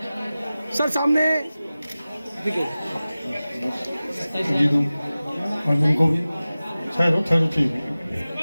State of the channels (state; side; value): inverted; both; correlation -0.97